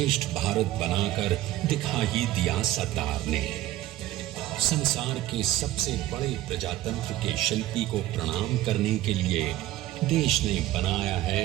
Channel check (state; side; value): quieter; left; 15.1 dB